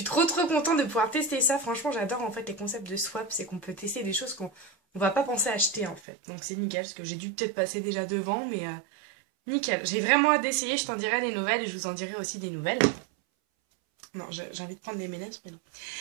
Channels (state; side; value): drops out; left; at 6.0 s